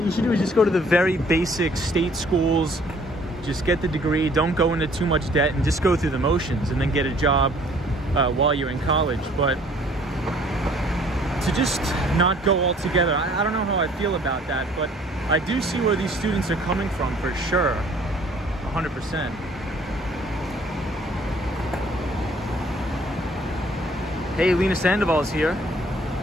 you should do is just go to the very basic state schools, just get the degree, don't go into too much debt, and just go through the motions and then get a job while you're in college. But to just not go altogether, I don't know how I feel about that, but I do see where these students are coming from for sure, 100%. Hey, Lena Sandoval's here.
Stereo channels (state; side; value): normal; both; correlation 0.58